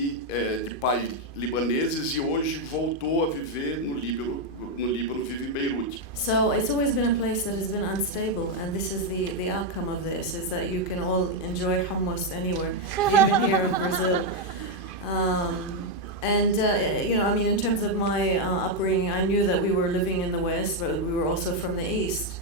de pais libaneses e hoje voltou a viver no Líbano, vive em Beirute. So it's always been a place that has been unstable, and this is the outcome of this, is that you can all enjoy hummus anywhere, even here in Brazil. In terms of my upbringing, I knew that we were living in the West, but we were also from the East.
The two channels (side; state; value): right; late; 2.5 ms